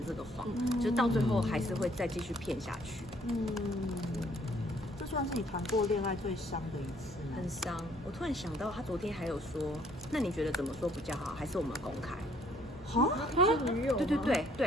这个谎，就是到最后还是会再继续骗下去。这算是你谈过恋爱最伤的一次吗？很伤。我突然想到，他昨天还有说，那你觉得怎么说比较好？还是我们公开？是女友吗？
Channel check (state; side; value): normal; both; correlation 0.63